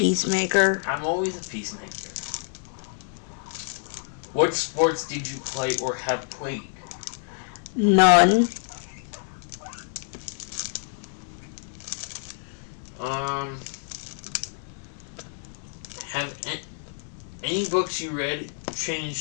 I'm always a peacemaker. What sports did you play or have played? None. Have any books you read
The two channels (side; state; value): right; silent; digital silence